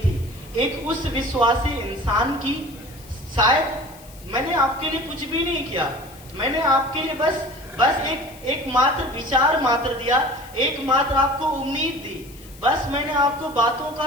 एक उस विश्वासी इंसान की, शायद मैंने आपके लिए कुछ भी नहीं किया, मैंने आपके लिए बस एक मात्र विचार मात्र दिया, एक मात्र आपको उम्मीद दी, बस मैंने आपको बातों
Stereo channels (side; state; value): left; noise; hiss, 22 dB below the sound